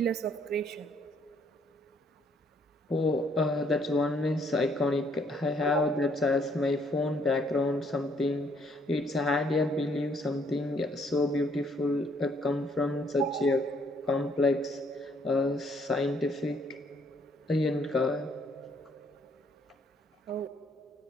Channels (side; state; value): both; normal; correlation 0.67